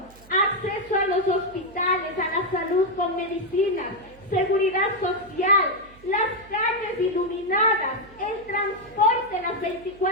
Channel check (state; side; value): noise; right; hum, 24 dB below the sound